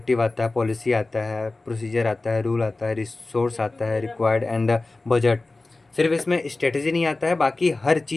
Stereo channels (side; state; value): right; quieter; 3.2 dB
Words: आता है, पॉलिसी आता है, प्रोसीजर आता है, रूल आता है, रिसोर्स आता है रिक्वायर्ड एंड बजट। सिर्फ इसमें स्ट्रेटजी नहीं आता है, बाकी हर